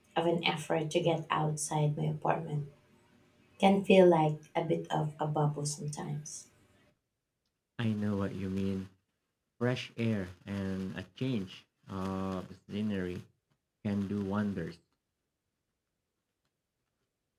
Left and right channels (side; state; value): both; identical; correlation 1.00